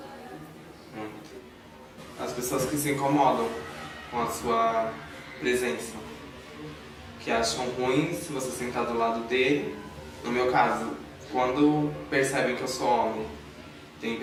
As pessoas que se incomodam com a sua presença. que acham ruim se você sentar do lado dele. No meu caso, quando percebem que eu sou homem, tem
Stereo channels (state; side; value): identical; both; correlation 1.00